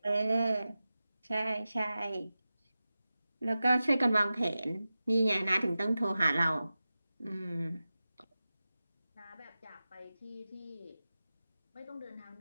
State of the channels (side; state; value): both; inverted; correlation -0.94